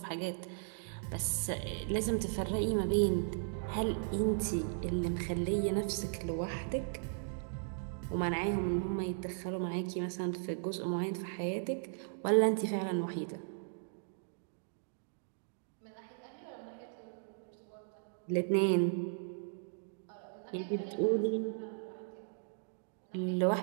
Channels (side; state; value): left; silent; digital silence